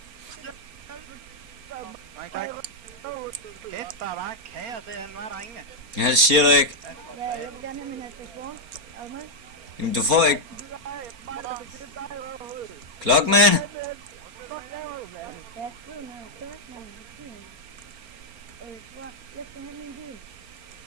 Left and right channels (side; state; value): left; late; 4.3 ms